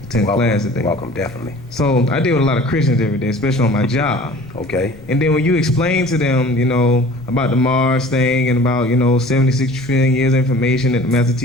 attend class today. Welcome, definitely. So I deal with a lot of Christians every day, especially on my job. Okay. And then when you explain to them, about the Mars thing and about 76 trillion years of information that the master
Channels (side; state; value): left; noise; rumble, 21 dB below the sound